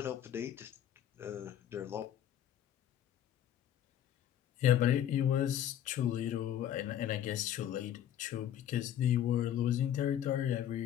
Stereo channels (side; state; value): right; quieter; 10.7 dB